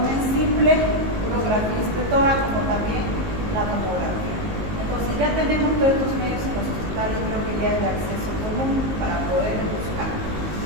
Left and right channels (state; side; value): late; left; 19 ms